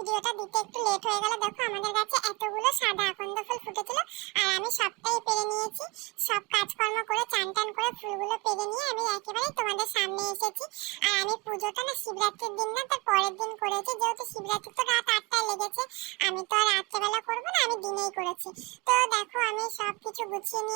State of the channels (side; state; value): left; quieter; 23.9 dB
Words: দিতে একটু লেট হয়ে গেল। দেখো আমাদের কাছে এতগুলো সাদা আকন্দ ফুল ফুটেছিল, আর আমি সবটাই পেরে নিয়েছি। সব কাজকর্ম করে চান টান করে ফুলগুলো পেরে নিয়ে আমি একেবারে তোমাদের সামনে এসেছি। আর আমি পুজোটা না শিবরাত্রির দিন না, তার পরের দিন করেছি। যেহেতু শিবরাত্রি তো রাত 8টায় লেগেছে, আমি তো আর রাত্রেবেলা করবো না, আমি দিনেই করেছি। তো দেখো আমি সব কিছু গুছিয়ে